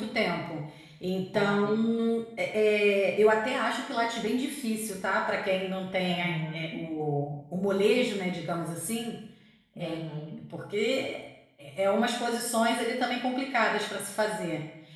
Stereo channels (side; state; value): both; identical; correlation 1.00